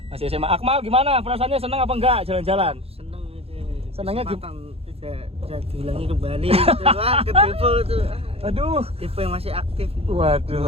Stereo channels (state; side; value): late; left; 0.29 ms